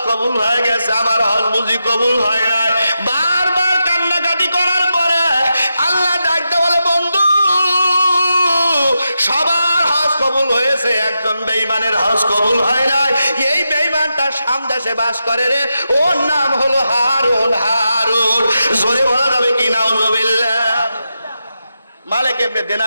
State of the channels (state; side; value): inverted; both; correlation -0.88